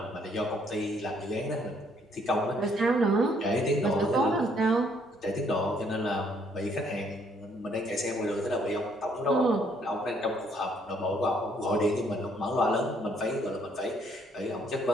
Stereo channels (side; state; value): both; normal; correlation 0.67